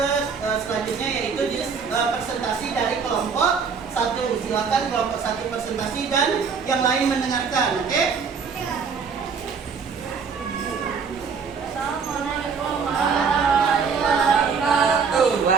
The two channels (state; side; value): quieter; left; 5.8 dB